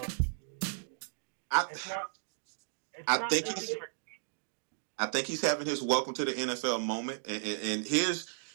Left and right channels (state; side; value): silent; left; digital silence